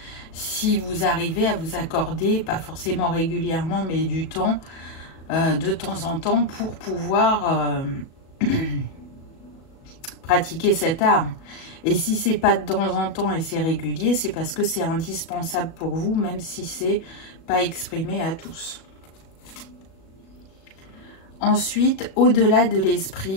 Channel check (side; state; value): right; late; 37 ms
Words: Si vous arrivez à vous accorder, pas forcément régulièrement, mais du temps de temps en temps pour pouvoir pratiquer cet art. Et si c'est pas de temps en temps et c'est régulier, c'est parce que c'est indispensable pour vous, même si c'est pas exprimé à tous. Ensuite, au-delà de